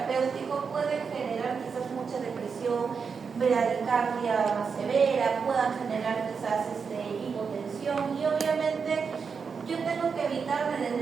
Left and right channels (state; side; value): quieter; left; 5.7 dB